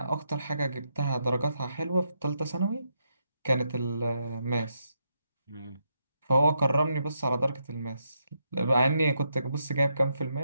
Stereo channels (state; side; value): inverted; both; correlation -0.81